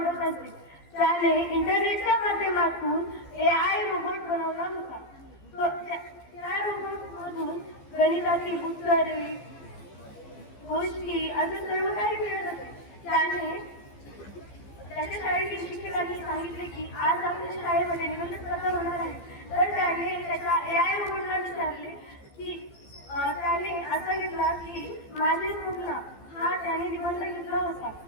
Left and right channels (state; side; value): late; right; 15 ms